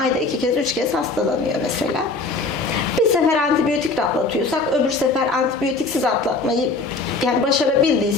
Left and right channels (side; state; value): right; quieter; 3.7 dB